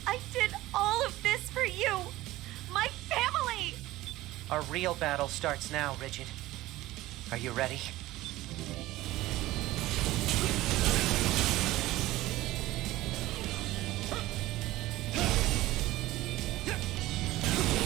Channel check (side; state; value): left; quieter; 17.1 dB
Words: I did all of this for you. My family. Our real battle starts now, Rigid. Are you ready?